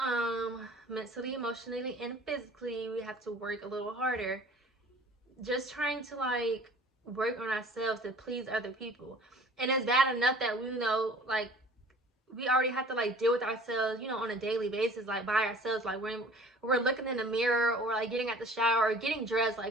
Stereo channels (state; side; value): normal; both; correlation 0.48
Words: mentally, emotionally, and physically, we have to work a little harder, just trying to work on ourselves to please other people. And it's bad enough that we we already have to deal with ourselves, on a daily basis, by ourselves, when we're looking in the mirror, or getting out the shower, or getting dressed,